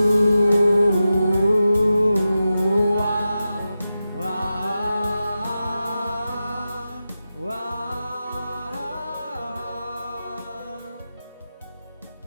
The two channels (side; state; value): both; inverted; correlation -0.92